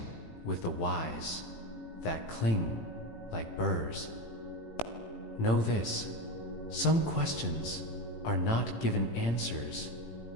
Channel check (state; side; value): late; right; 18 ms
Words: with the whys that cling like burrs, know this: some questions are not given answers